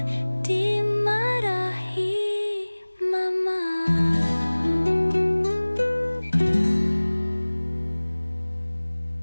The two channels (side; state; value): both; inverted; correlation -1.00